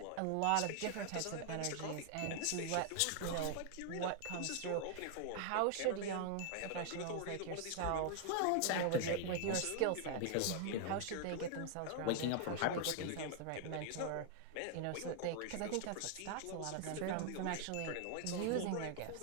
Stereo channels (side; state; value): both; different; correlation 0.00